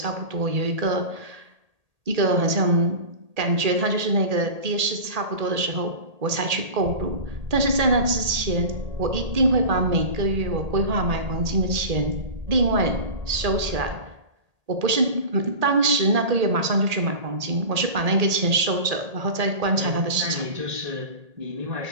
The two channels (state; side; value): late; left; 1.8 ms